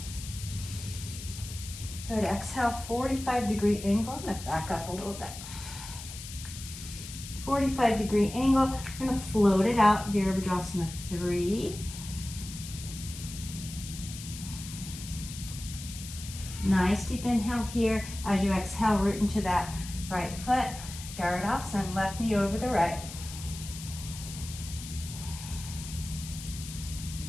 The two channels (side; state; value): left; noise; hiss, 11 dB below the sound